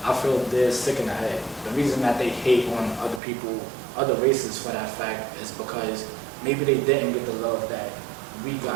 I feel they're sick in the head. The reason that they hate on other people, other races for that fact, is because maybe they didn't get the love that we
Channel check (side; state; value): left; drops out; at 3.2 s